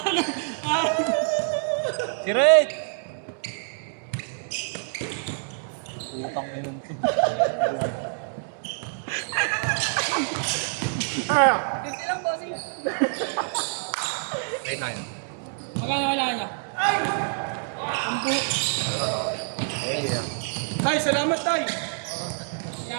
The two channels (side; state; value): left; silent; digital silence